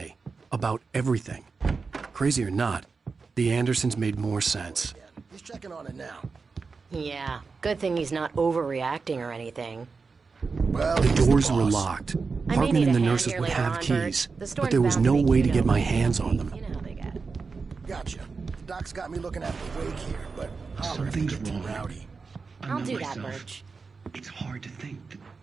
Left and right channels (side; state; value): left; quieter; 4.6 dB